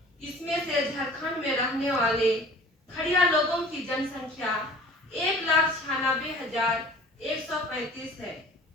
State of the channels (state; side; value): normal; both; correlation 0.46